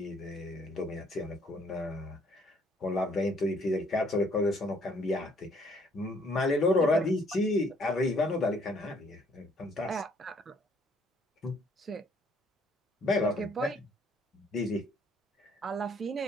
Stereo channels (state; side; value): normal; both; correlation 0.64